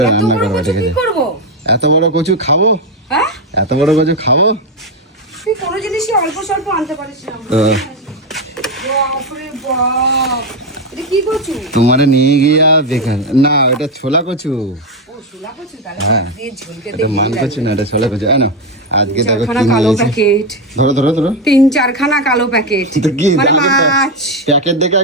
রান্না করবো, ঠিক কি আছে? করবো? এত বড় কচু খাবো? হ্যাঁ এত বড় কচু খাবো? তুই কোনো জিনিসই অল্প স্বল্প আনতে পারিস না। বাপরে বাপ, এটা কি কচু? তোমারে নিয়ে গিয়া বেকার না, এটা ছোলা কচু। ও শোলা কচু, তাহলে হ্যাঁ। দিয়ে ঝোল খেতে এটা মান ভালো কচু লাগে। না, এটা ছোলা কচু। না আজকে দেখো চারখানা কি কালো নিয়েছে। প্যাকেট, ধরো ধরো ধরো। 3-4খানা কালো প্যাকেট, তো কি মানে মাছ। প্যাকেট দেখে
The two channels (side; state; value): both; normal; correlation 0.09